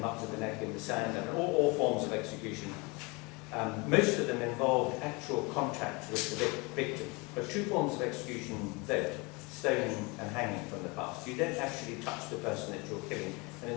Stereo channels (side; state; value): right; quieter; 27.4 dB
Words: up to the neck in the sand, and all forms of execution. Most of them involved actual contact with the victim. But two forms of execution don't: stoning and hanging from the past. You don't actually touch the person that you're killing. And in